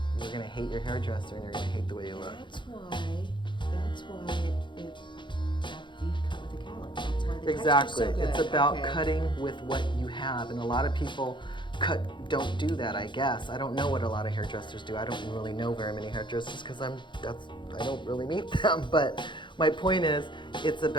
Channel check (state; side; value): late; right; 0.23 ms